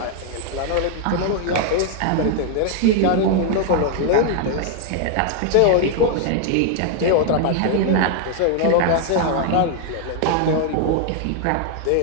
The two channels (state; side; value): different; both; correlation 0.00